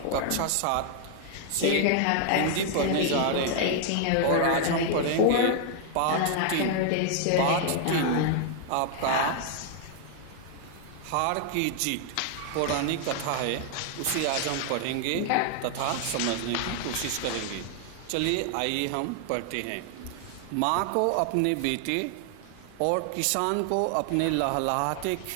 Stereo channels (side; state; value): both; different; correlation 0.00